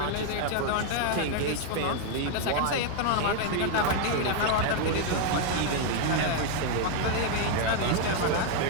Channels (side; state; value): both; different; correlation 0.00